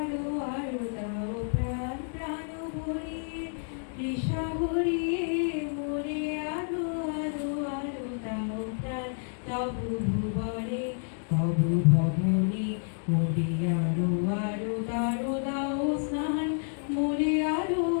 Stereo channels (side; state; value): right; silent; 58 dB below the other